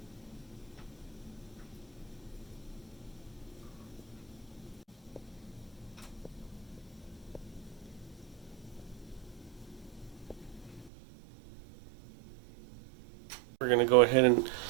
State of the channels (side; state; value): left; drops out; at 10.9 s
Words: We're going to go ahead and